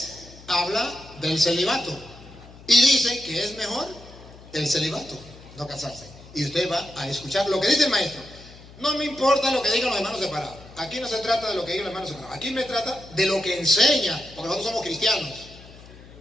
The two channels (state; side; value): noise; left; hum, 20 dB below the sound